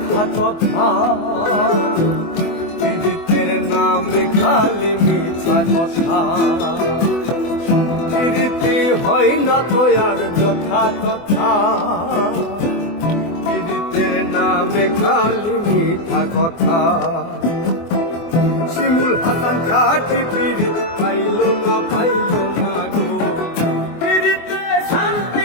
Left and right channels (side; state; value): right; late; 24 ms